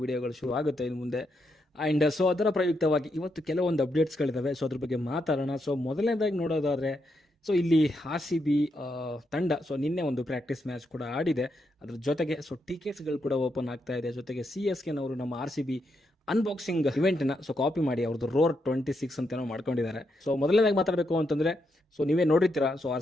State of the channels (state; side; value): normal; both; correlation 0.81